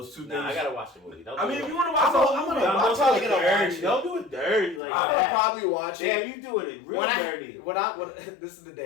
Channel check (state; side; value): drops out; right; at 4.8 s